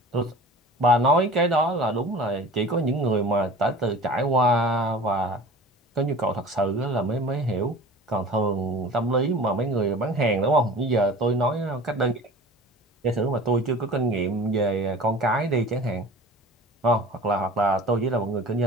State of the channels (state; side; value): normal; both; correlation 0.41